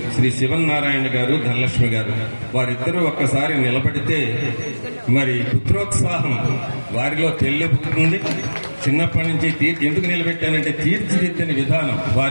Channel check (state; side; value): inverted; both; correlation -1.00